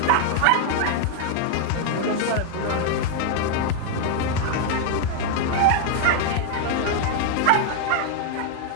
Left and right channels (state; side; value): different; both; correlation 0.00